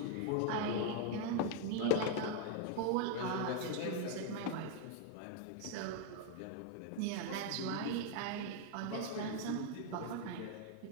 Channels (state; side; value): different; both; correlation 0.00